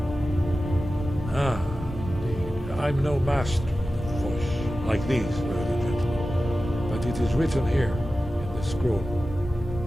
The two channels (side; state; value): both; normal; correlation 0.94